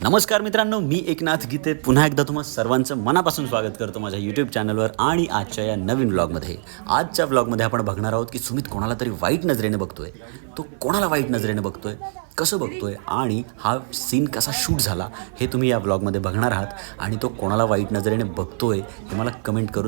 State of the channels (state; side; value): silent; left; digital silence